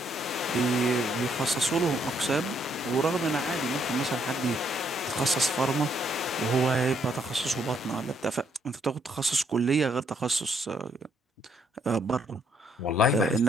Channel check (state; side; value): normal; both; correlation 0.71